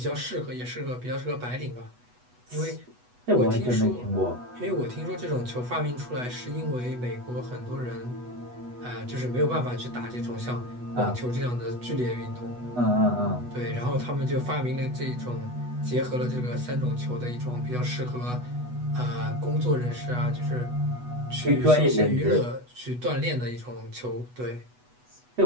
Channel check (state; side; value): late; left; 8.1 ms